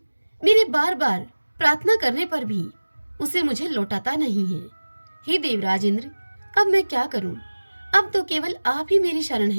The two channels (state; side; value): inverted; both; correlation -1.00